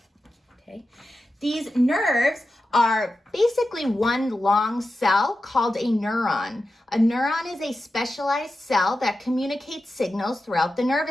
Okay. These nerves are basically one long cell called a neuron. A neuron is a specialized cell that communicates signals throughout the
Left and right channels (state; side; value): normal; both; correlation 0.92